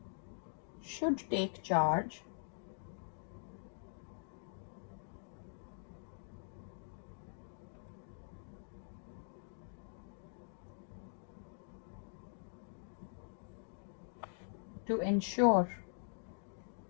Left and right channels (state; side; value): silent; right; digital silence